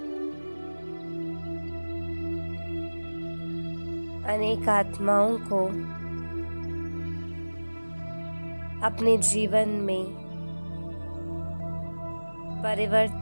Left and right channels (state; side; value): inverted; both; correlation -1.00